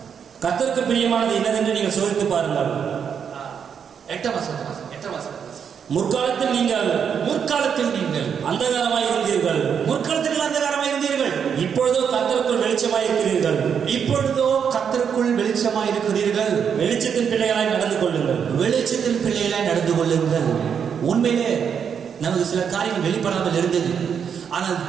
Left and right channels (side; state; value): left; quieter; 7.4 dB